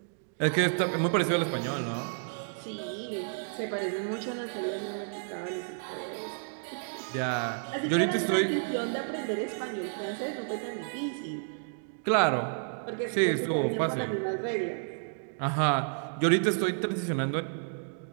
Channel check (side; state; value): left; silent; digital silence